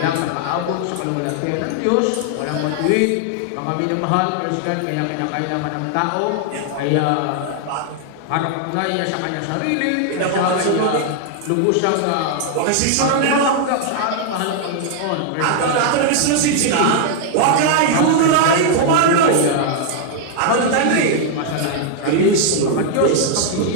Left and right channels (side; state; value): both; different; correlation 0.00